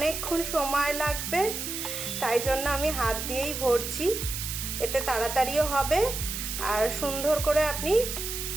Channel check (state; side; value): noise; right; hiss, 5 dB below the sound